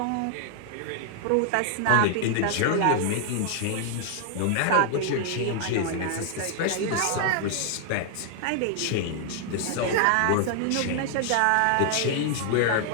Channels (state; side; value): different; both; correlation 0.00